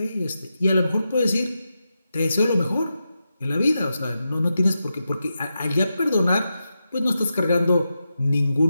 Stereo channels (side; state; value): both; inverted; correlation -0.89